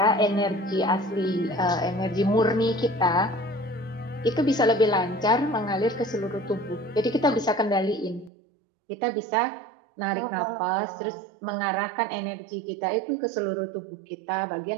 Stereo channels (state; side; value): drops out; left; at 8.3 s